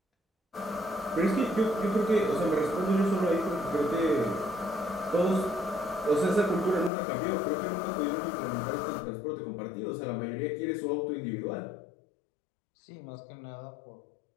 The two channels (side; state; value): right; drops out; at 6.9 s